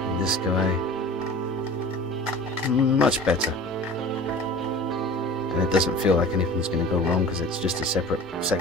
And this guy, much better. And it doesn't feel like anything's going to go wrong because it's just a separate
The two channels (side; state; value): both; normal; correlation 0.40